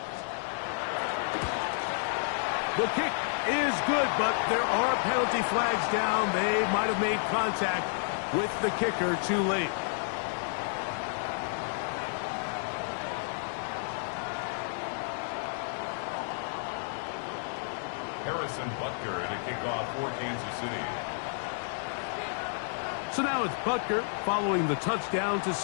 The kick is good, but there are penalty flags down. They might have made contact with the kicker too late. Harrison Butker to kick off for Kansas City. So now it's Butker following the touchdown to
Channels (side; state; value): right; silent; digital silence